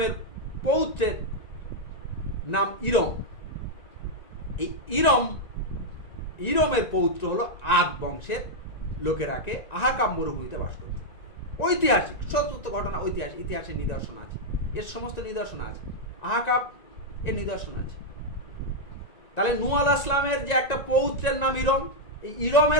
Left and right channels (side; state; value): right; late; 1.9 ms